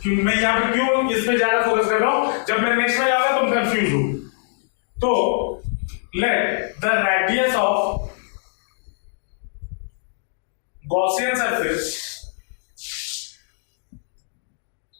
क्यों मैं यहां पे क्यों इस पे ज्यादा फोकस कर रहा हूं, जब मैं नेक्स्ट में जाऊंगा तुम कंफ्यूज हो। तो let the radius of Gaussian surface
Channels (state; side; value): silent; right; digital silence